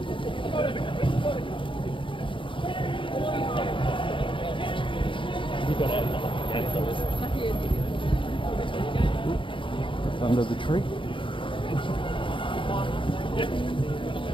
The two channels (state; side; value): late; right; 0.25 ms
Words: Under the tree.